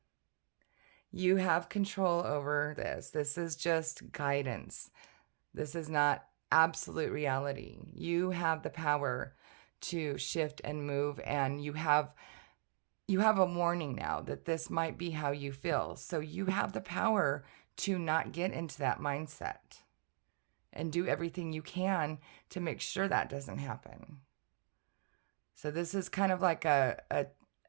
you have control over this. This is just guidance. This is not absolute reality. You have the power to shift and move, and you have a warning now that this might be how you feel. So you have the power to not get into that mindset and do everything you can to make sure that doesn't happen. So this is kind of like a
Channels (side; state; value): left; silent; 52 dB below the other